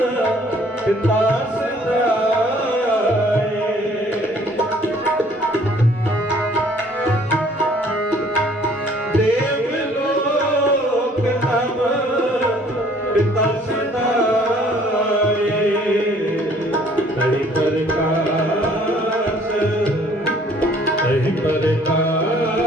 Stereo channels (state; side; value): normal; both; correlation 0.58